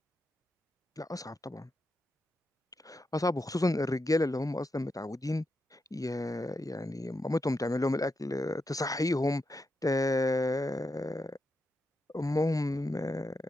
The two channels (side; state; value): both; normal; correlation 0.85